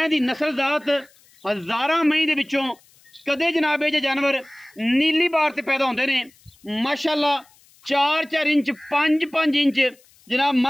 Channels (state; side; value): noise; left; hiss, 30 dB below the sound